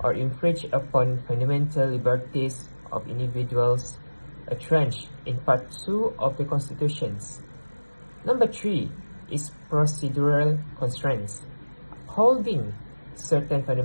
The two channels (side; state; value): both; inverted; correlation -1.00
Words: or infringe upon fundamental liberties of individuals entrenched in Part 2 of the Constitutions. Number 3 is procedural constraints. Holding certain